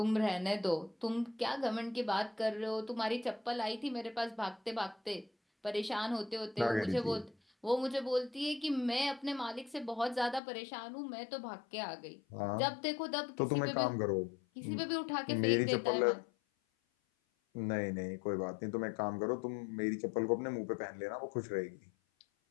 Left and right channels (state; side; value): drops out; right; at 10.4 s